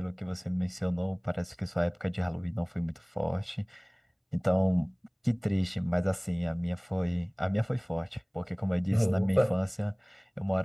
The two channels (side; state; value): both; identical; correlation 1.00